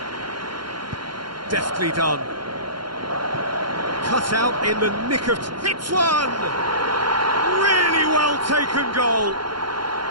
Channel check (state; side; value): late; left; 0.72 ms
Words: Deftly done. Cut out in the nick of... Hits one! Really well taken goal.